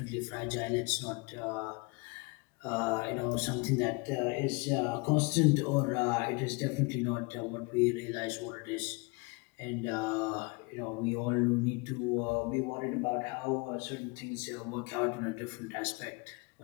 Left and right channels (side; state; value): right; quieter; 28.9 dB